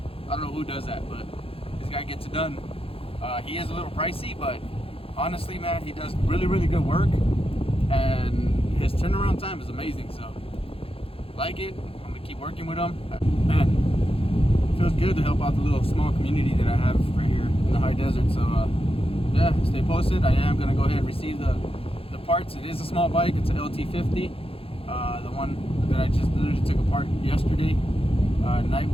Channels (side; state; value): right; late; 0.27 ms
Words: I don't know who does that, but this guy gets it done. He is a little pricey, but honestly, man, he does really good work, and his turnaround time is amazing. So, like it. I'm gonna keep working with him. Man, feels good to help out the little small community that I have right here in the high desert. So, yeah, stay posted. I am gonna go ahead and receive the parts. It is a small bike. It's an lt50. The one that I just literally took apart yesterday night